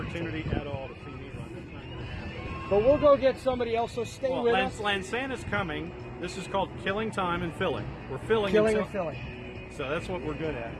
at all to see me run. That's not going to happen. But we'll go get somebody else, so stay Well, with us. Lansana's coming. This is called killing time and filling. We're filling Killing until- and filling. So that's what we're good at.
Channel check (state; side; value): identical; both; correlation 1.00